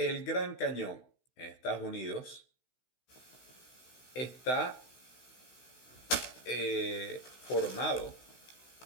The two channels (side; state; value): right; late; 16 ms